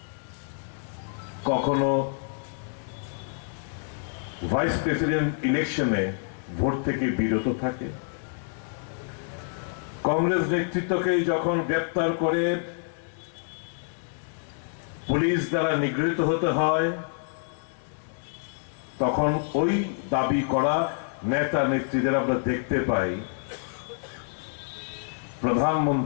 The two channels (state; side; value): silent; right; digital silence